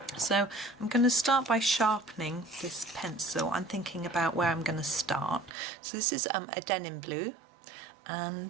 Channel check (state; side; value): drops out; left; at 5.5 s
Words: So I'm going to start by sharpening this pencil. I'm thinking about where I'm going to start. So this is a Denim Blue,